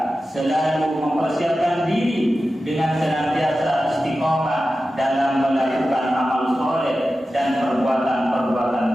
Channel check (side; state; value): both; normal; correlation 0.93